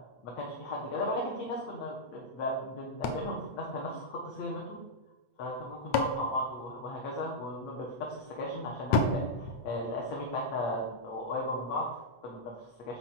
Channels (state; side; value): late; right; 8.0 ms